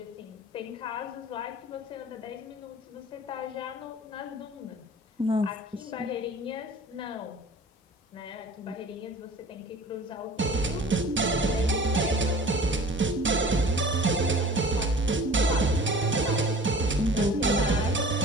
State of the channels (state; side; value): normal; both; correlation 0.43